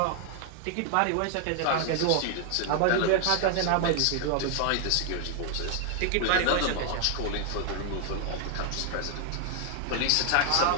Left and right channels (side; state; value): both; different; correlation 0.00